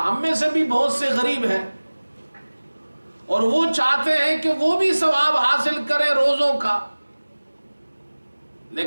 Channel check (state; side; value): inverted; both; correlation -1.00